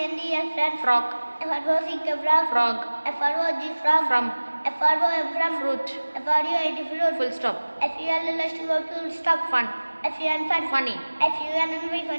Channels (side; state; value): both; inverted; correlation -1.00